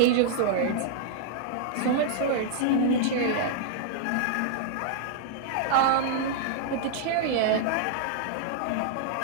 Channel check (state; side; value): different; both; correlation -0.01